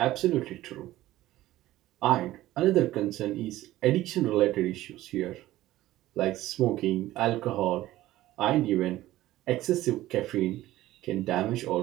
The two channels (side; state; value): left; quieter; 15.6 dB